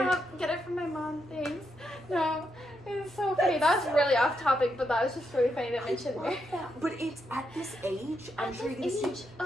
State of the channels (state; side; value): normal; both; correlation 0.82